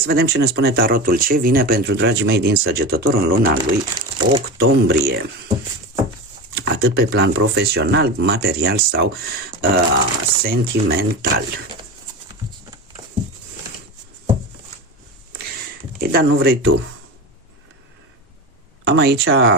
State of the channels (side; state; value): both; normal; correlation 0.24